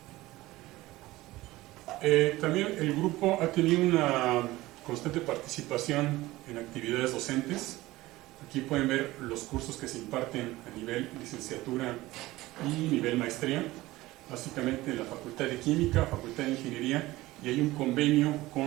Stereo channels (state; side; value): quieter; left; 18.3 dB